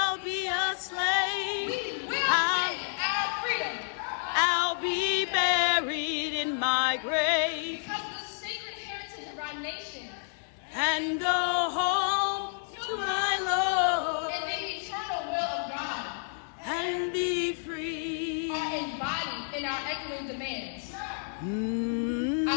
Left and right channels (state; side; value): silent; right; 58 dB below the other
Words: be a slave, my grave. Because of the sacred heritage of our nation. And go home to my Lord. And the eternal will of God. And be free. Are embodied in our echoing demands.